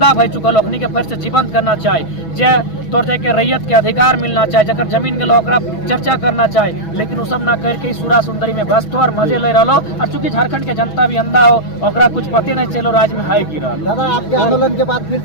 भई चुकल ओखनी के फिर से जीवंत करना चाहिए, जे तौर के रैयत के अधिकार मिलना चाहिए, जकर जमीन के लोग चर्चा करना चाहिए, लेकिन वो सब ना करके सूरा सुंदरी में व्यस्त हो और मजे ले रहा। और चूंकि झारखंड के जनता भी अंधा हो, ओकरा कुछ पते नहीं चलो राज्य में है की रहा। दादा आपके आंदोलन के बाद फिर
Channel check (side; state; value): right; late; 6.2 ms